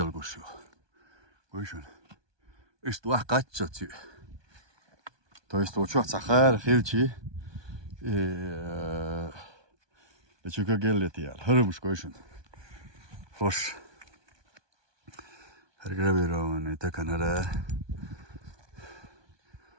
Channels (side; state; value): left; late; 1.2 ms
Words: kuşu. Koşun. İşte vaka çat. То есть вот что сахар, хилчи, лечука геллетиал, хөрөмш койшун. Хош. Харграбирон это канара.